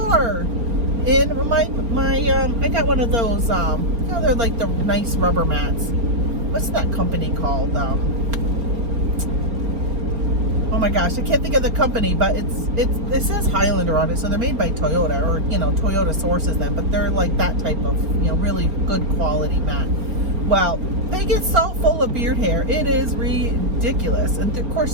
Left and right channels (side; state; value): left; late; 4.3 ms